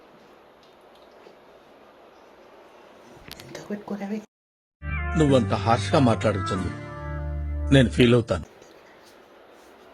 ఎంత పెట్టుకోలేవి నువ్వంత హార్ష్గా మాట్లాడుతుంది నేను ఫీల్ అవుతాను.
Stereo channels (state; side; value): identical; both; correlation 1.00